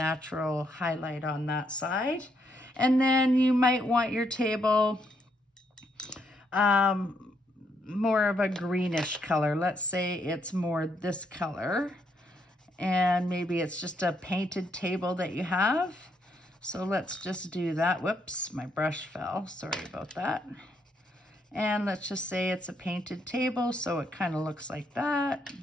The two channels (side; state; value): both; normal; correlation 0.75